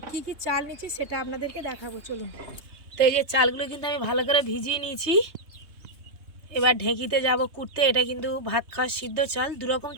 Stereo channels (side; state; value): left; late; 3.3 ms